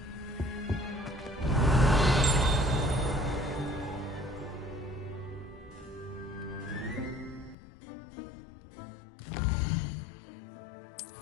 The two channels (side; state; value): right; drops out; at 7.6 s